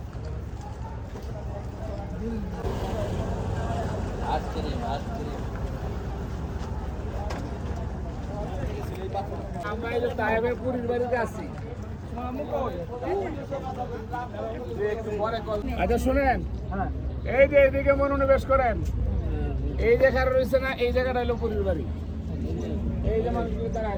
আমরা এই যে তায়েবের বুড়ির বাড়িতে আছি। আচ্ছা শুনেন, এই যে এইদিকে মনোনিবেশ করেন, এই জায়গাটা রয়েছে না, এই জায়গাটা হলো বুড়ির বাড়ি। এই যে মানুষগুলো তারা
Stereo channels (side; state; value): both; identical; correlation 1.00